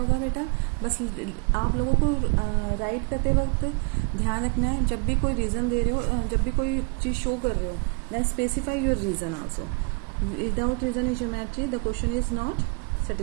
बेटा? बस आप लोगों को राइट करते वक्त ध्यान रखना है, जब भी कोई रीज़न दे रहे हो, जब भी कोई चीज़ शो कर रहे हो, then specify your reason also. Without reason in geometry the question is not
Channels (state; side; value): quieter; left; 33.6 dB